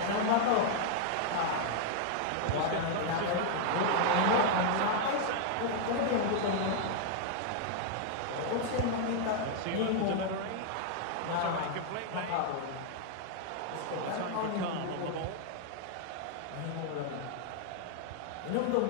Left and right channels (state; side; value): different; both; correlation -0.01